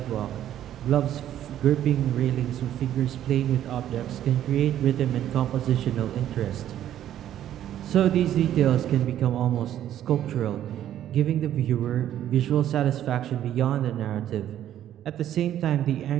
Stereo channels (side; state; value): left; quieter; 11.5 dB